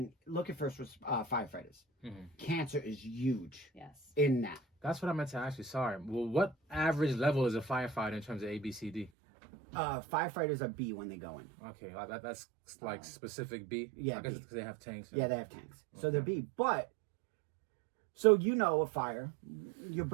look at firefighters. Mm-hmm. Cancer is huge Yes. in that. That's what I meant to ask you. Sorry. Well, what average level is a firefighter in terms of ABCD? Firefighters are B when they go in. Okay, like that's like specific B. Yeah, I guess B. it's because they have tanks. Yeah, they have tanks. So they're Okay. B. But, so you know a fire, you're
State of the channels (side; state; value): left; drops out; at 9.1 s